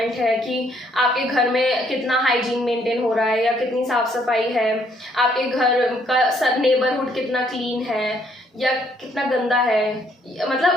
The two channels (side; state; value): both; normal; correlation 0.68